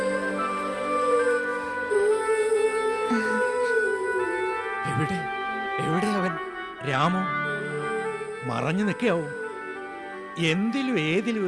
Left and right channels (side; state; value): both; identical; correlation 1.00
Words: എവിടെ അവൻ? രാമു മറഞ്ഞു നിൽക്കാവും. എന്തിലും ഏതിലും